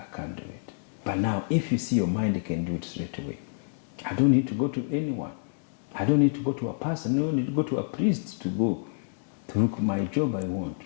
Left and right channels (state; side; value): silent; right; digital silence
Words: can't do it. But now, if you see your mind, you can do it straight away. I don't need to go to anyone. I don't need to go to a person. I don't need to go to a priest to look my job I